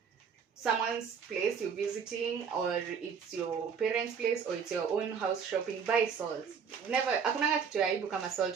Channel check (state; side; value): quieter; left; 6.6 dB